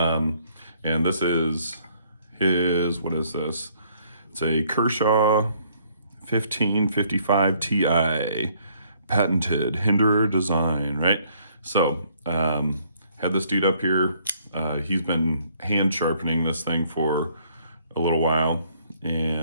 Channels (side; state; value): both; inverted; correlation -0.65